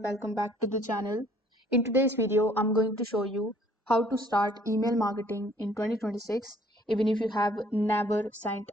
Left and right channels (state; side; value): normal; both; correlation 0.59